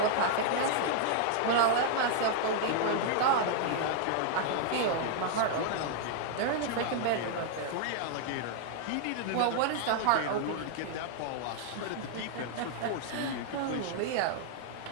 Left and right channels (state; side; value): different; both; correlation 0.00